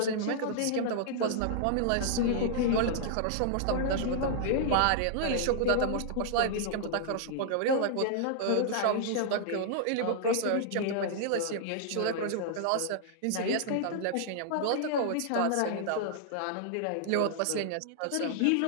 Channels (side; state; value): both; different; correlation -0.01